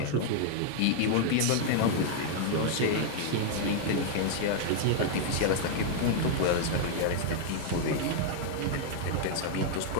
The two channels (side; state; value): both; different; correlation 0.00